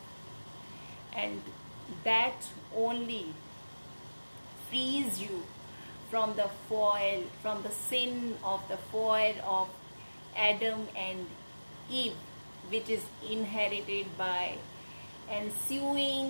and that only frees you from the sin of the fall of Adam and Eve, which is inherited by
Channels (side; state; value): both; inverted; correlation -1.00